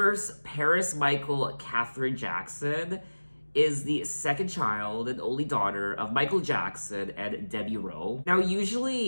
Paris Michael Catherine Jackson is the second child and only daughter of Michael Jackson and Debbie Rowe. Now,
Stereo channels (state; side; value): inverted; both; correlation -1.00